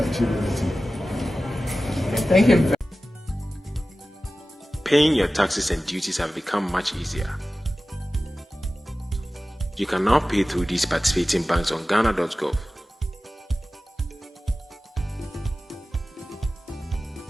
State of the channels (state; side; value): normal; both; correlation 0.96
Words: anything. Thank you. Paying your taxes and duties have become much easier. You can now pay through these participating banks on ghana.gov.